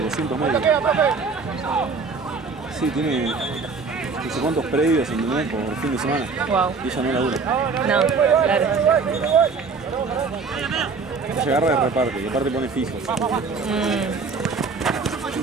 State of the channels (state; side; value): quieter; left; 4.7 dB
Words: 200 metros. Sí, tiene no sé cuántos predios, ¿entendés? Por fin de semana. Wow. Y ella no labura. No, claro. Ella agarra y reparte, y aparte pone fijo.